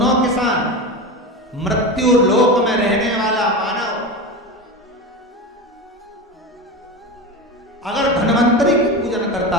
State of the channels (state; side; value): normal; both; correlation 0.24